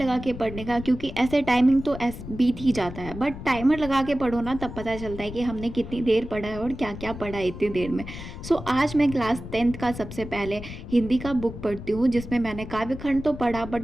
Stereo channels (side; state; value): left; noise; rumble, 11 dB below the sound